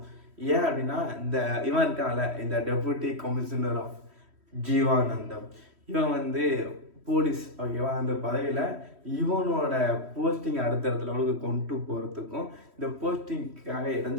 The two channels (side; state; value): left; late; 3.1 ms